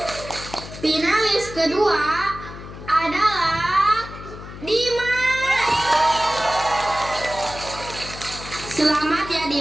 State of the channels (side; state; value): left; noise; hum, 13 dB below the sound